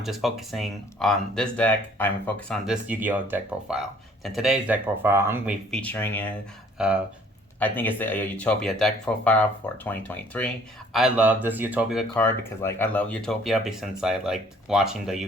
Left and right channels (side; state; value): both; normal; correlation 0.58